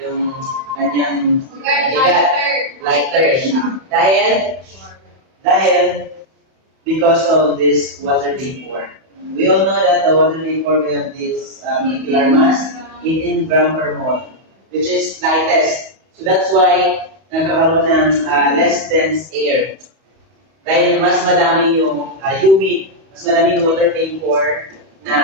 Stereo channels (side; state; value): left; late; 31 ms